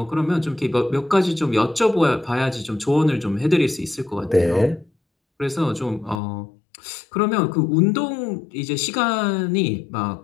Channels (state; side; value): drops out; right; at 6.2 s